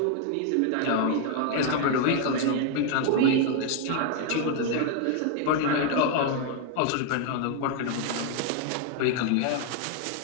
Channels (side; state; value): both; different; correlation 0.00